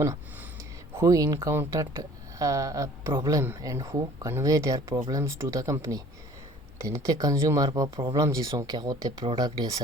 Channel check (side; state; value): both; normal; correlation 0.50